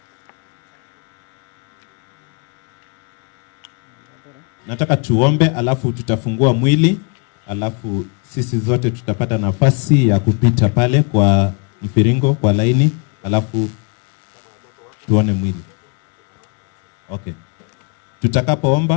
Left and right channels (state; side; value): quieter; right; 34.7 dB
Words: Nataka tuombe, alafu tutafungua mwili, alafu sisi zote tutapata nafasi ya kupita pale kwa mfiringo, kwa laini, alafu tuone mwili. Okay.